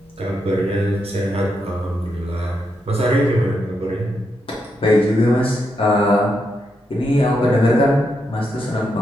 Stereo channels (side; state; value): both; normal; correlation 0.82